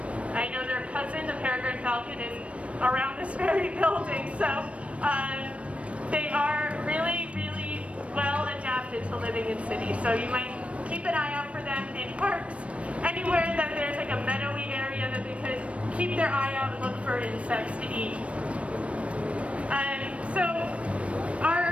know their cousin, the peregrine falcon, is around this very building, so they are really, really well adapted to living in cities. So you might keep an eye out for them in parks, anywhere that there's like a meadowy area that they could keep their eye out and look for insects to eat. So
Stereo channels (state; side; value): late; left; 0.062 ms